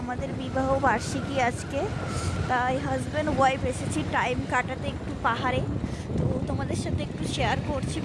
বিবাহ বার্ষিকী আজকে, তাই হাজব্যান্ড ওয়াইফ এসেছি টাইম কাটাতে একটু পাহাড়ে। তো তোমাদের সাথে একটু শেয়ার করছি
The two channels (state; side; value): identical; both; correlation 1.00